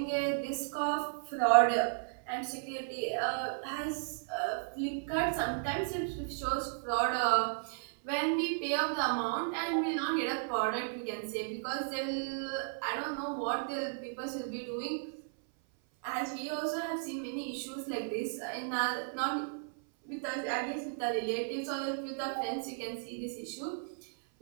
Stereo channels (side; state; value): left; silent; 55 dB below the other